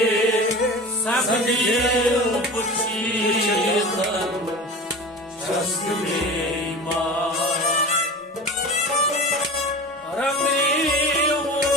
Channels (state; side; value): normal; both; correlation 0.34